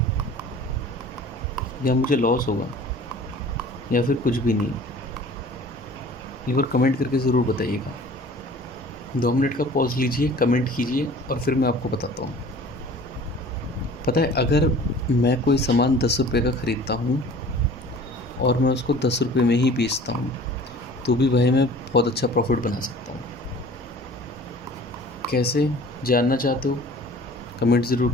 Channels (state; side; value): normal; both; correlation 0.46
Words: या मुझे लॉस होगा या फिर कुछ भी नहीं? एक बार कमेंट करके ज़रूर बताइएगा। 2 मिनट का पॉज लीजिए, कमेंट कीजिए और फिर मैं आपको बताता हूँ। पता है, अगर मैं कोई सामान 10 रुपये का ख़रीदता हूँ और मैं उसको 10 रुपये में ही बेचता हूँ, तो भी भाई मैं बहुत अच्छा प्रॉफिट बना सकता हूँ। कैसे जानना चाहते हो, कमेंट ज़रूर